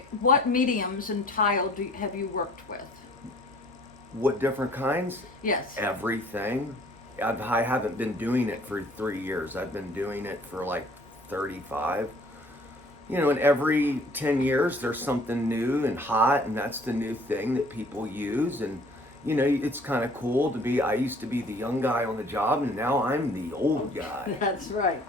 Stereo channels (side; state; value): both; normal; correlation 0.55